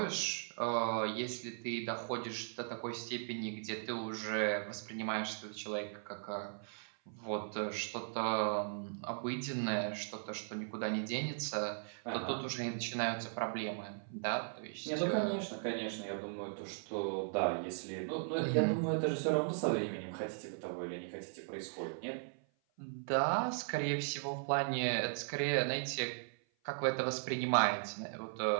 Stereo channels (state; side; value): silent; left; 52 dB below the other